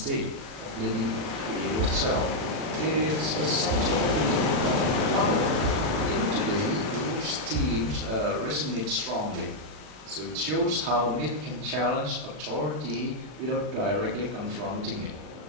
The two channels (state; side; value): late; left; 39 ms